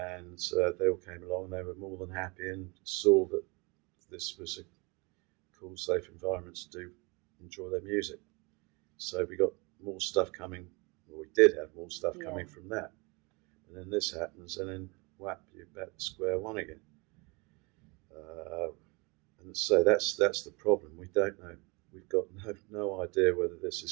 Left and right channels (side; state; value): left; quieter; 28.2 dB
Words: they all came along, and they were more than happy and saw that this was a cool, safe environment to enjoy their music. So we got more stuff coming. Well, we did have more stuff coming from that. And then this happens, and then whap, you're back to square one again. And so that's the problem. We don't know. We've got no idea whether this